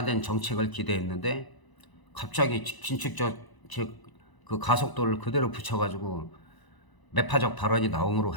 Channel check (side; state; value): right; late; 1.0 ms